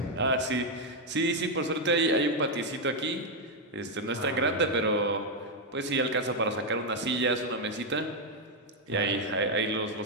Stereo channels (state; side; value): normal; both; correlation 0.01